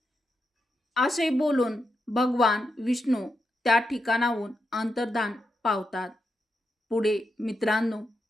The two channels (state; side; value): normal; both; correlation 0.85